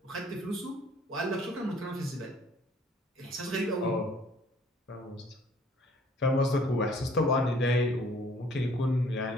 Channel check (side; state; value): both; normal; correlation 0.57